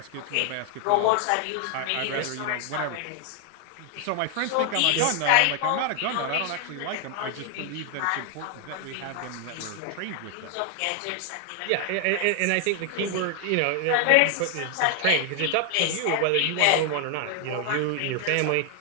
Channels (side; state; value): both; different; correlation 0.00